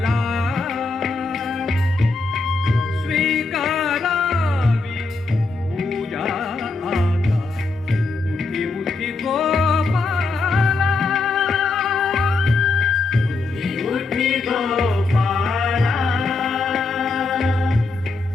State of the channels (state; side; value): quieter; right; 3.7 dB